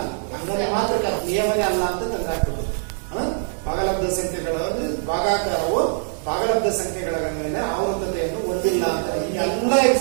ಹಂಗನೆ ಮಾತ್ರ ನಿಯಮನೇ ಅಲ್ಲ ಅಂತ ತಂದಾಕ್ತದೆ. ಭಾಗಲಬ್ಧ ಸಂಖ್ಯೆಗಳ ಭಾಗಾಕಾರವು ಭಾಗಲಬ್ಧ ಸಂಖ್ಯೆಗಳ ಮೇಲೆ ಆವರ್ತತೆಯನ್ನು ಹೊಂದಿಲ್ಲ ಅಂತ ಈ ಎಲ್ಲ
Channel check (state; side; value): silent; left; digital silence